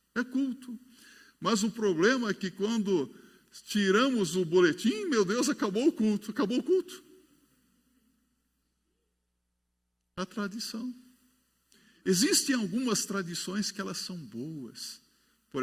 É culto. Mas o problema é que quando tiramos o boletim, meu Deus, acabou o culto. Acabou o culto. A tradição. Existem algumas tradições que elas são boas.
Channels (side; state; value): both; identical; correlation 1.00